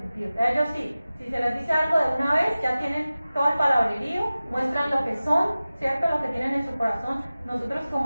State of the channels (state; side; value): inverted; both; correlation -0.96